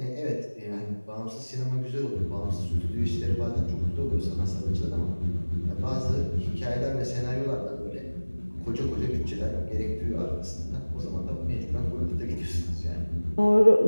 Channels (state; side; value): inverted; both; correlation -1.00